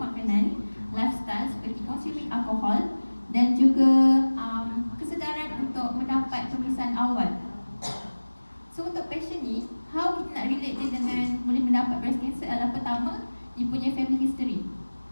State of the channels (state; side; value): inverted; both; correlation -1.00